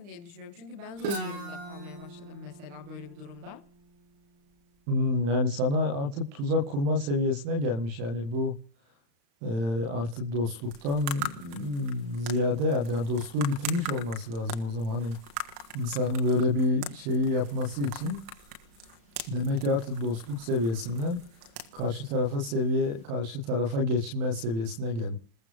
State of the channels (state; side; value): late; left; 35 ms